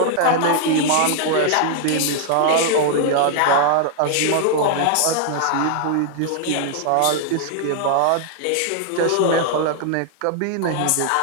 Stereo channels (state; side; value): different; both; correlation 0.00